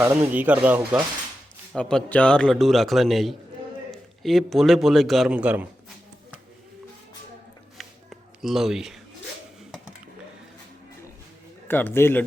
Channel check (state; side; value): normal; both; correlation 0.91